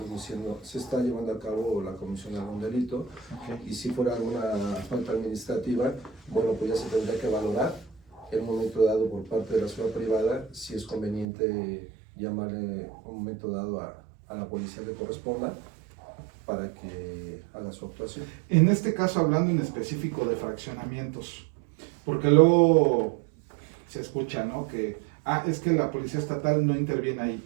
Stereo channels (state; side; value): drops out; left; at 11.2 s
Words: llevando a cabo la comisión de algún delito. Y si fuera alguna falta administrativa, bueno, pues ya se tendría que valorar en un momento dado por parte de la seguridad privada si es conveniente llamarle un momento dado a la policía que corresponda para que haga su actuación. En este caso, hablando en específico de fraccionamientos, porque luego se escucha, ¿no? Que es que la policía estatal no interviene